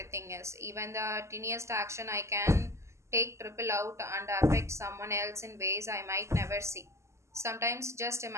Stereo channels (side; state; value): left; late; 0.13 ms